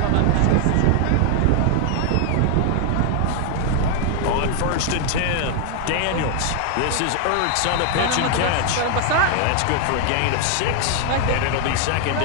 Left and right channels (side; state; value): both; different; correlation 0.00